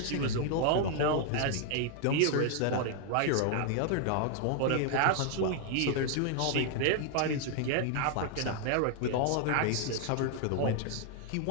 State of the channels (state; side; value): different; both; correlation 0.00